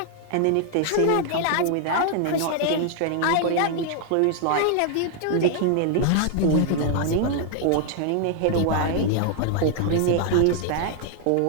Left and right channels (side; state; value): both; different; correlation 0.00